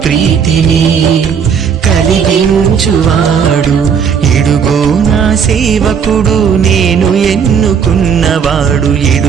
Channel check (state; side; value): quieter; left; 7.0 dB